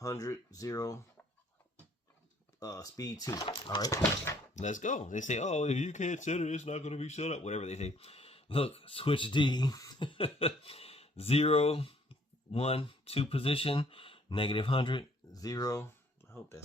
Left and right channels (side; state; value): both; normal; correlation 0.62